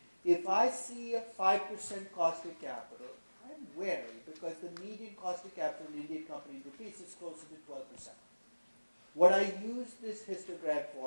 if I see a 5% cost of capital, I'm wary because the median cost of capital in an Indian company in rupees is closer to 12%. What I use this histogram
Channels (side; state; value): both; inverted; correlation -1.00